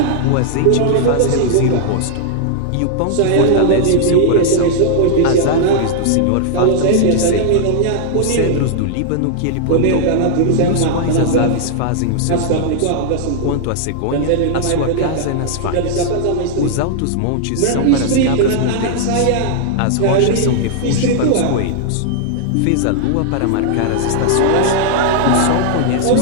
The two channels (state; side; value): different; both; correlation -0.01